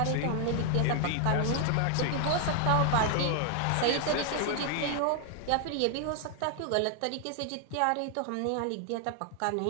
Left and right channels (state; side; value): different; both; correlation 0.00